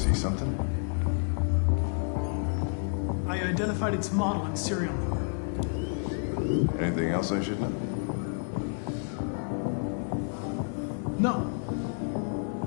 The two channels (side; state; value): right; silent; 57 dB below the other